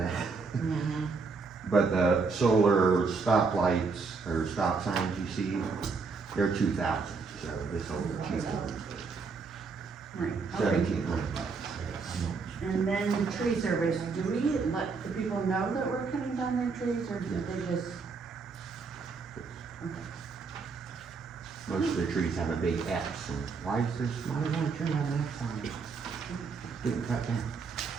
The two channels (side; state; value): left; quieter; 4.7 dB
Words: Mm-hmm. But the solar stop lights, or stop signs you see, they're 2,000, so this will be cheaper, Right, okay. $1,700. And then the tree service, do we let the people know that we're cutting down their trees, or do they just? Okay. Most of the trees have a big X, and why does one tree have an X on it? Didn't cut down.